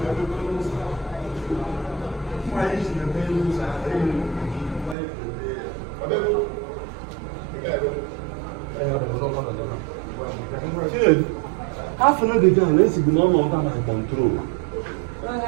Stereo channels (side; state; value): left; drops out; at 5.0 s